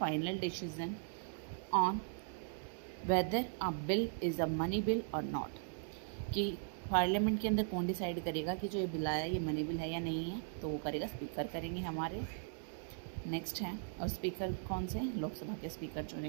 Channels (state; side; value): silent; left; digital silence